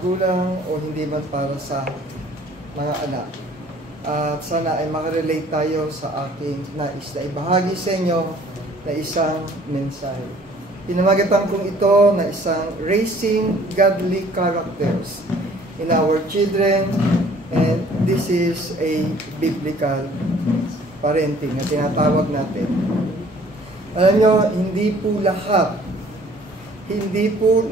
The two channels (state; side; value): normal; both; correlation 0.55